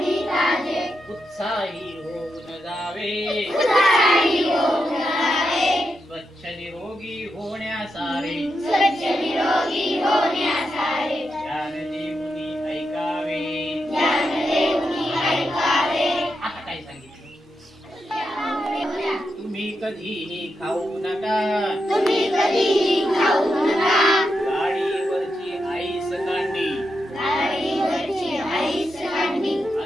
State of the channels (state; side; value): normal; both; correlation 0.85